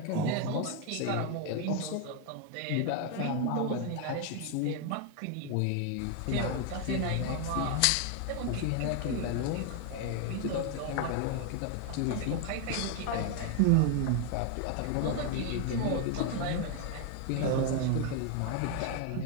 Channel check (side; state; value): both; different; correlation 0.01